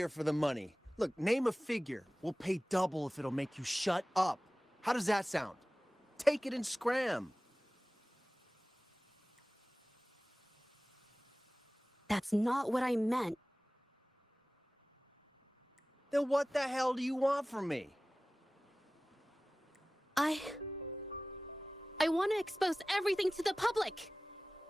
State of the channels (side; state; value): both; normal; correlation 0.98